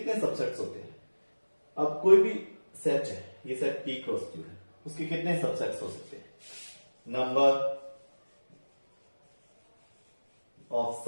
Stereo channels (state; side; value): inverted; both; correlation -1.00